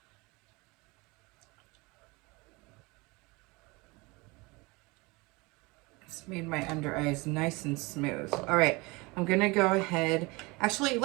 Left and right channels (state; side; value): quieter; left; 25.1 dB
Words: It's made my under eyes nice and smooth. All right, I'm gonna go ahead. Actually,